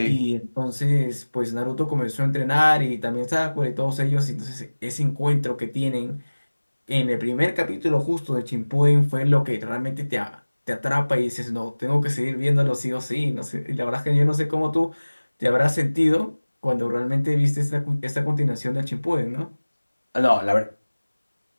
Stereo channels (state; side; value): inverted; both; correlation -1.00